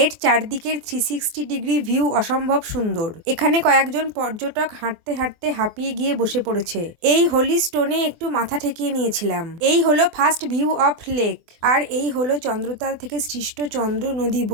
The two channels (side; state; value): left; late; 24 ms